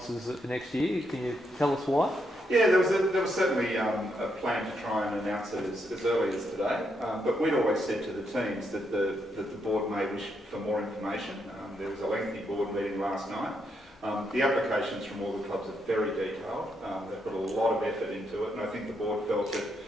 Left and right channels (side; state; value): both; normal; correlation 0.79